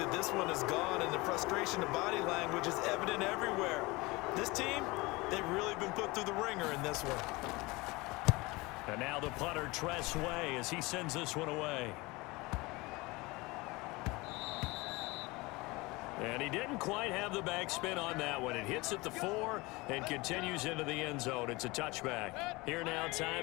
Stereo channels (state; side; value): quieter; right; 23.3 dB